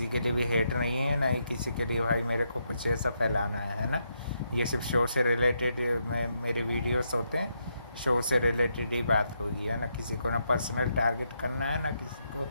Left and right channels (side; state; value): both; inverted; correlation -0.80